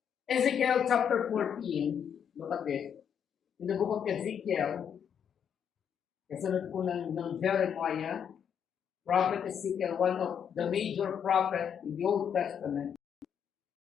Ezekiel chapter 14, look at this. In the book of Ezekiel, kasunod po ng Jeremiah, Prophet Ezekiel, one of the major prophets in the Old Testament.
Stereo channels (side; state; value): right; quieter; 8.0 dB